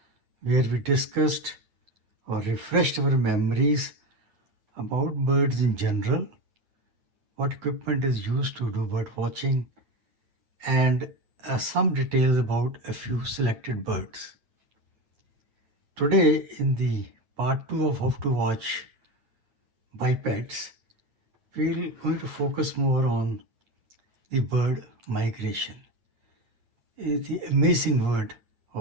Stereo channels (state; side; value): late; left; 9.3 ms